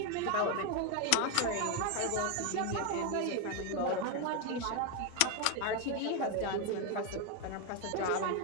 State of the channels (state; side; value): different; both; correlation 0.01